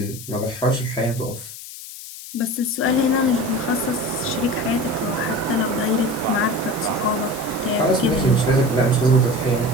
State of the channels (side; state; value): left; noise; hiss, 13 dB below the sound